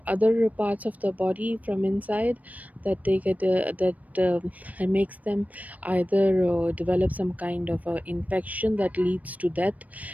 other parts of the body from inside, that they get that makes them either develop some kind of infection that leads to death,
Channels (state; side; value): late; left; 0.073 ms